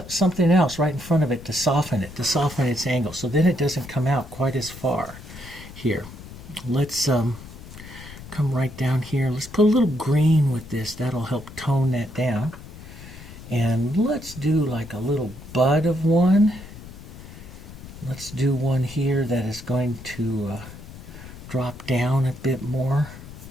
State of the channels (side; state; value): left; noise; rumble, 15 dB below the sound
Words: else right in front of it to soften its angle, so then it doesn't come out quite as far. Here, let's come right down here. Let's put a little green with this. That'll help tone that down. And let's do like a little bud of one. Let's do one here that is going to drop down a bit more